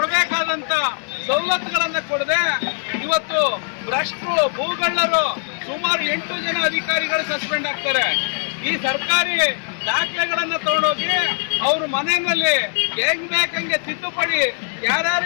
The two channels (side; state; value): right; silent; digital silence